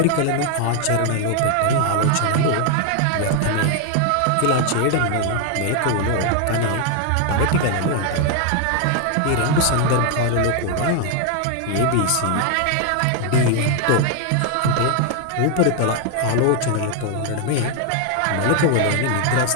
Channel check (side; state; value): both; different; correlation 0.00